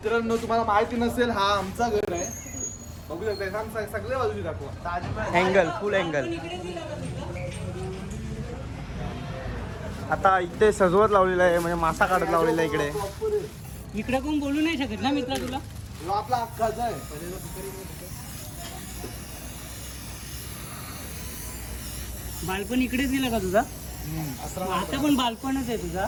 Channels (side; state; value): both; identical; correlation 1.00